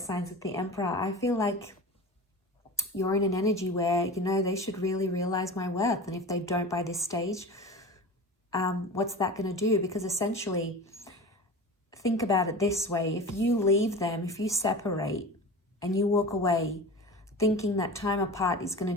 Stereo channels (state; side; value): normal; both; correlation 0.32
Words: with the Emperor. I feel like you're in an energy where, you know, they should really realize my worth. And if they don't by this stage, what's that going to do? Because essentially, think about it this way. If you leave them, if you separate and you walk away thinking that time apart is going